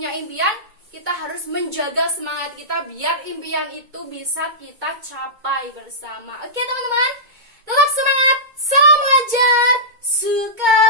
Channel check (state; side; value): late; left; 2.2 ms